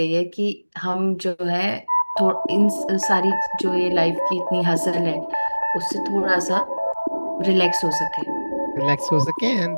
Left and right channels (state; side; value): inverted; both; correlation -1.00